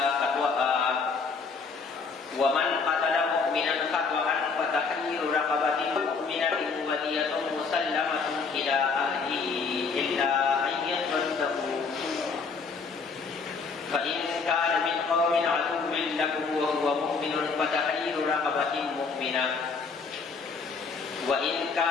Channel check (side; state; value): right; quieter; 4.9 dB